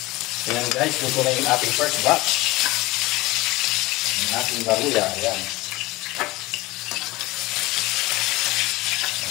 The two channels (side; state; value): right; quieter; 20.4 dB